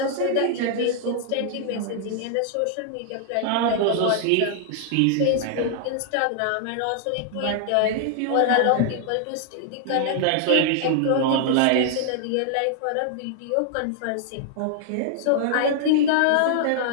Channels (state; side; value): different; both; correlation 0.00